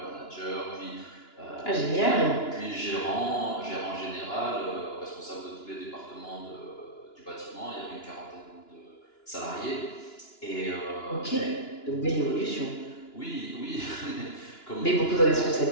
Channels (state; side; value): late; right; 2.9 ms